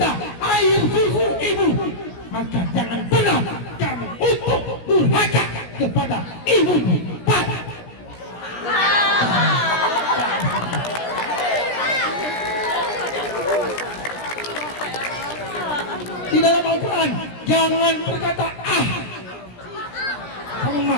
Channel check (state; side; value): late; right; 17 ms